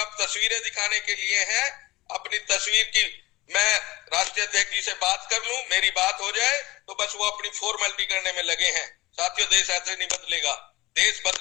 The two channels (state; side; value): quieter; right; 19.8 dB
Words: तस्वीरें दिखाने के लिए हैं। अपनी तस्वीर की मैं राष्ट्रीय अध्यक्ष जी से बात कर लूं, मेरी बात हो जाए तो बस वो अपनी फॉर्मेलिटी करने में लगे हैं। साथियों देश ऐसे नहीं बदलेगा, देश